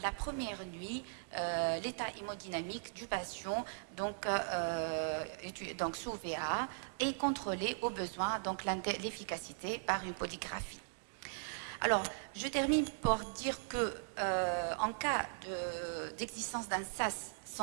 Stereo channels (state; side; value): silent; left; digital silence